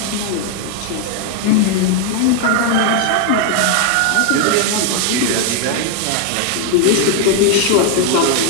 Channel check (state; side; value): different; both; correlation 0.00